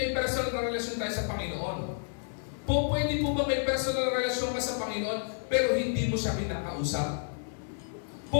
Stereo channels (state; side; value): silent; right; digital silence